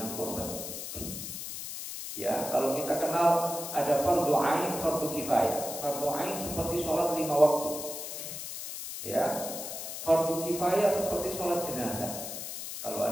korban. Ya, kalau kita kenal ada fardu ain, fardu kifayah. Fardu ain seperti sholat 5 waktu. Ya, fardu kifayah seperti sholat jenazah. Kalau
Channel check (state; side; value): noise; left; hiss, 7 dB below the sound